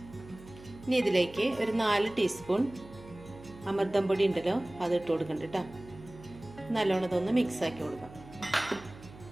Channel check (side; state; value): right; noise; hum, 19 dB below the sound